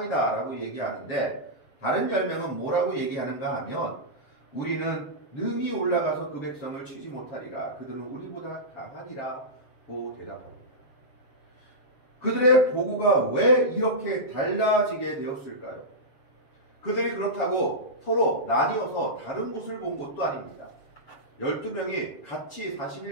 라고 얘기하는데 다른 10명은 뭐라고 얘기하는가 하면 우리는 능히 올라가서 그 백성을 치지 못하리라. 그들은 우리보다 강하니라고 대답합니다. 그들의 보고가 왜 이렇게 달라지게 되었을까요? 그들이 그렇다고 서로 나뉘어서 다른 곳을 본 것도 아닙니다. 12명이 같이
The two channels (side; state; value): right; late; 7.2 ms